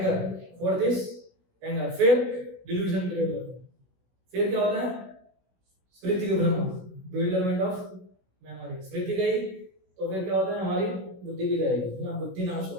Fourth is anger. फिर डिल्यूजन क्रिएट होता है। फिर क्या होता है? स्मृति के भ्रम, bewilderment ऑफ मेमोरी। स्मृति गई तो फिर क्या होता है? हमारी बुद्धि भी जाएगी ना, बुद्धि नाश हो,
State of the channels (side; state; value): left; late; 16 ms